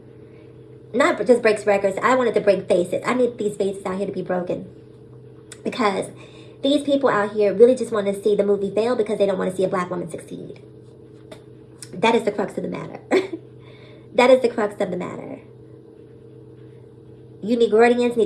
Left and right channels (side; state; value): both; identical; correlation 1.00